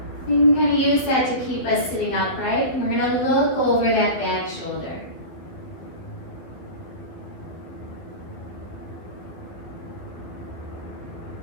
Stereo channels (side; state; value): right; late; 12 ms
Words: You can kind of use that to keep us sitting upright. And we're going to look over that back shoulder.